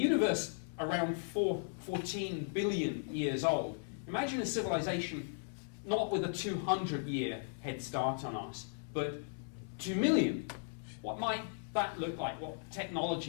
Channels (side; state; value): right; silent; 53 dB below the other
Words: around 14 billion years old, imagine a civilization not with a 200-year head start on us, but 2 million. What might that look like? What